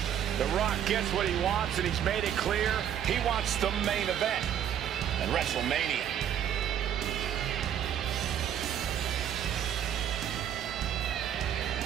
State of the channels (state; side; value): quieter; left; 9.7 dB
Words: The Rock gets what he wants, and he's made it clear he wants the main event at WrestleMania.